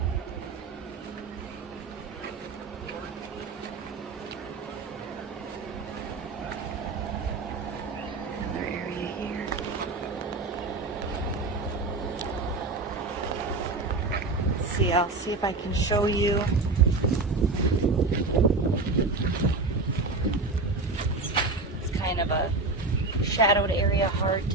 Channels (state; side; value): quieter; left; 3.5 dB